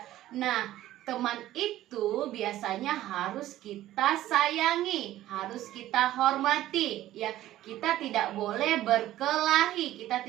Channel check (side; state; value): left; quieter; 14.3 dB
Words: Nah, teman itu biasanya harus kita sayangi, harus kita hormati, ya. Kita tidak boleh berkelahi, kita